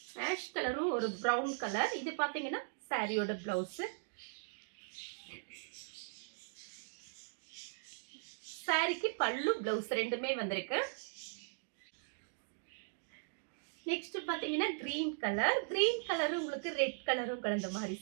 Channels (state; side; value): silent; left; digital silence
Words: ஆஷ் கலரும் ஒரு பிரவுன் கலர். இது பாத்தீங்கன்னா சாரியோட பிளவுஸ். சாரிக்கு பல்லு பிளவுஸ் ரெண்டுமே வந்திருக்கு. நெக்ஸ்ட் பாத்தீங்கன்னா கிரீன் கலர். கிரீன் கலரும் உங்களுக்கு ரெட் கலரும் கலந்த மாதிரி